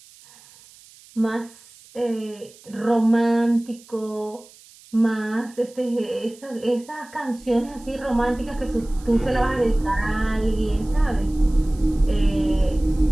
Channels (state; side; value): noise; right; hiss, 24 dB below the sound